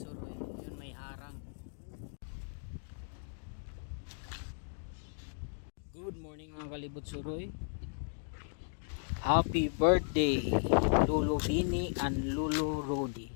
Yun may harang. Good morning mga kalibot suroy. Happy birthday Lulu Bini and Lulu Rudy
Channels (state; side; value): silent; right; digital silence